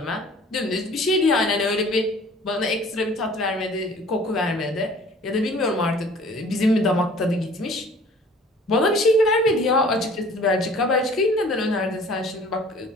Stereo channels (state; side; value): normal; both; correlation 0.50